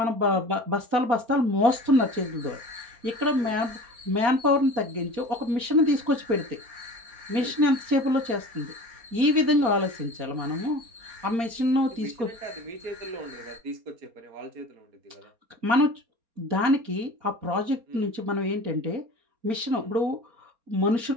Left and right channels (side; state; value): left; late; 4.3 ms